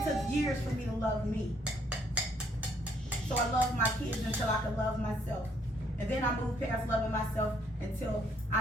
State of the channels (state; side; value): normal; both; correlation 0.68